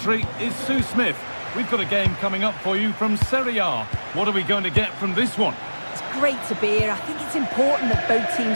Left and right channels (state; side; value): inverted; both; correlation -1.00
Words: is Sue Smith. We've got a game coming up for you from Serie A. What are we going to get from this one? It's great to be here. I think it's important that both